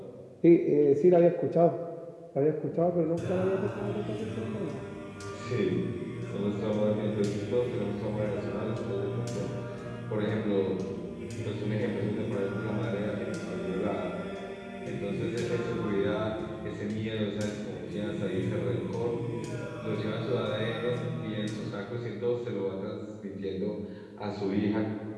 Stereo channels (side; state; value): both; identical; correlation 1.00